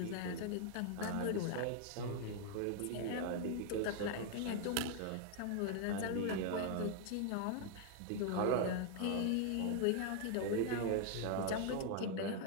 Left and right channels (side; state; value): both; different; correlation 0.00